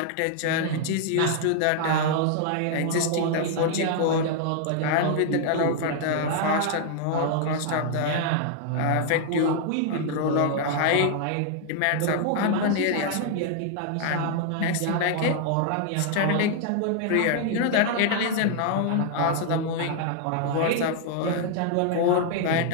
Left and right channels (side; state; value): both; different; correlation 0.00